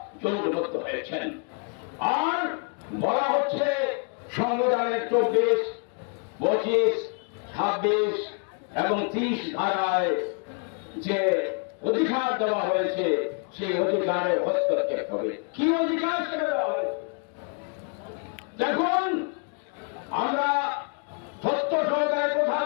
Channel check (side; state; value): right; quieter; 39.5 dB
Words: জোটবদ্ধ হয়েছেন। আর বলা হচ্ছে সংবিধানের 24, 25, 26, এবং 30 ধারায় যে অধিকার দেওয়া হয়েছে সেই অধিকারে হস্তক্ষেপ হবে। কি অধিকার সেটা দেওয়া হয়েছে? দেখুন, আমরা সত্য সহকারে কথা